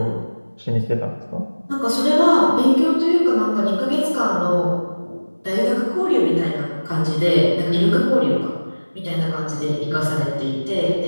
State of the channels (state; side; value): inverted; both; correlation -1.00